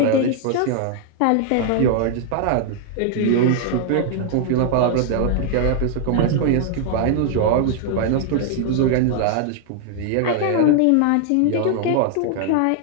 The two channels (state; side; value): different; both; correlation 0.00